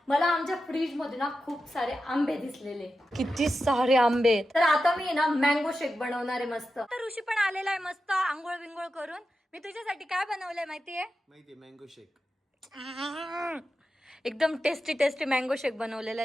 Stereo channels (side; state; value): both; normal; correlation 0.91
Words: मला आमच्या फ्रीज मध्ये ना खूप सारे आंबे दिसलेले. किती सारे आंबे. तर आता मी ना मँगो शेक बनवणार आहे मस्त. तर ऋषी पण आलेला आहे मस्त आंघोळ विंगोळ करून. मी तुझ्यासाठी काय बनवलंय माहितीये? मँगो शेक. एकदम टेस्टी टेस्टी मँगो शेक बनवलेला